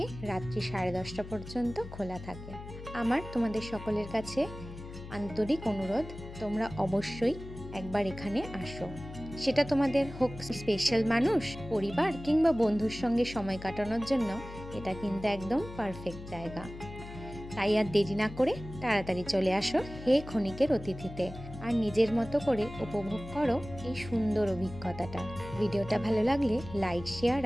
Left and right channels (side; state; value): left; noise; hum, 13 dB below the sound